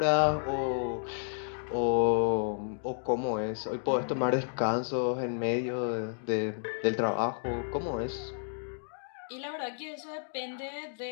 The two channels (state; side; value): silent; right; digital silence